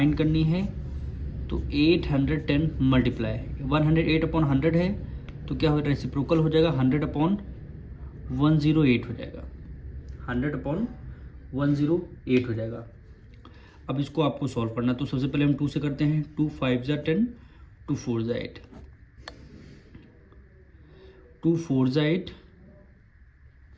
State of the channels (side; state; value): both; identical; correlation 1.00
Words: करनी है, तो 810 मल्टीप्लाई 108 अपॉन 100 है, तो क्या हो जाएगा, रेसिप्रोकल हो जाएगा, 100 अपॉन 108 हो जाएगा, 100 अपॉन 108 हो जाएगा। अब इसको आपको सॉल्व करना है, तो सबसे पहले हम 2 से करते हैं। 2 5 ज़ा 10, 2 4 ज़ा 8, 2 4 ज़ा 8